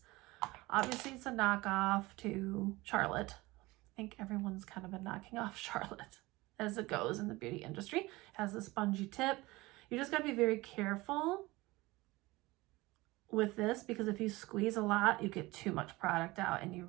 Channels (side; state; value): left; quieter; 21.0 dB